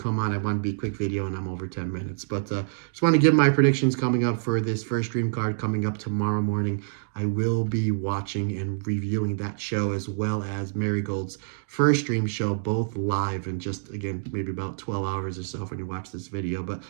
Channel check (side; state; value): left; silent; digital silence